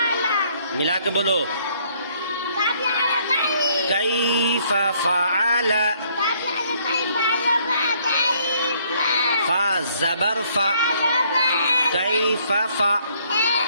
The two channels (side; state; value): both; inverted; correlation -0.65